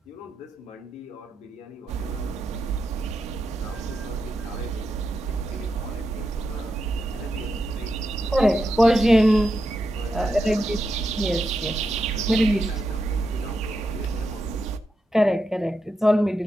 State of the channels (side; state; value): both; normal; correlation 0.86